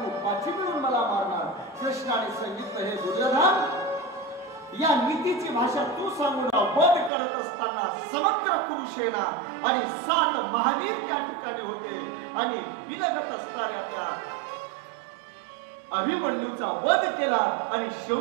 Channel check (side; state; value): left; drops out; at 7.1 s